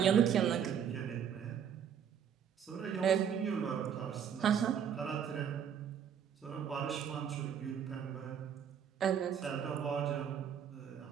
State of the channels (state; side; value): quieter; left; 8.3 dB